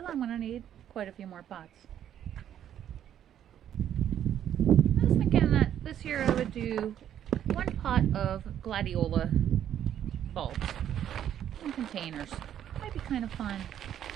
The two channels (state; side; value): quieter; left; 10.3 dB